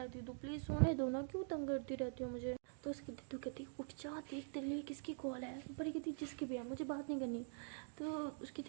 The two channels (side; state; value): left; silent; digital silence